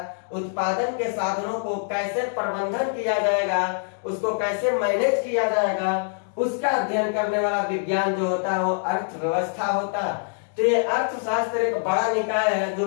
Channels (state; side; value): silent; right; digital silence